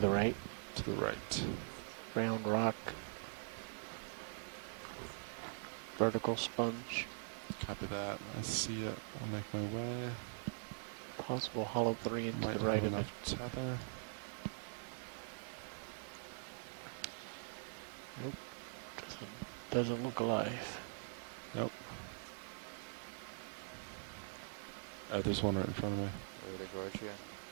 right. To the right. Round rock. Vertical sponge. Copy that. I see it. I'll make my way. Possible hollow 3 into Might the right have of it. enough tether. Nope. Doesn't look alive. Nope. There's one right in front of me. Right at Gorge, yeah.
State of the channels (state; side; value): silent; left; digital silence